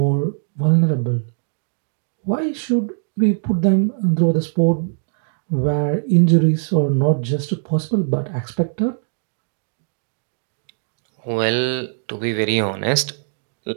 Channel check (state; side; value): silent; left; digital silence